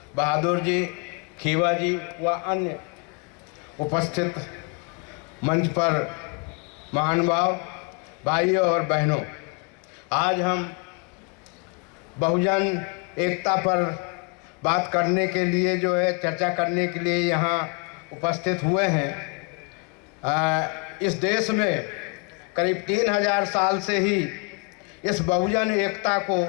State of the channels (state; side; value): quieter; right; 32.1 dB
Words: बहादुर जी, खीवा जी व अन्य उपस्थित मंच पर महानुभाव भाइयों और बहनों, आज हम बहुजन एकता पर बात करने के लिए चर्चा करने के लिए यहाँ उपस्थित हुए हैं। इस देश में करीब 3000 साल से ही इस बहुजन एकता को